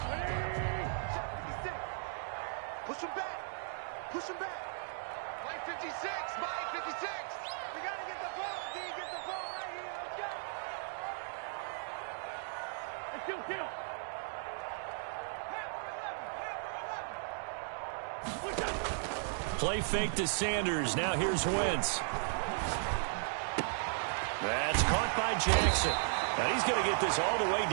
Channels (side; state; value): left; silent; digital silence